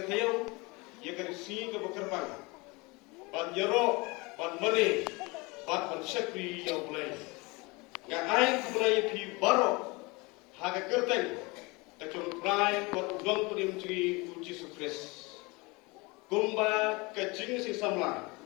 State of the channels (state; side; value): quieter; right; 25.9 dB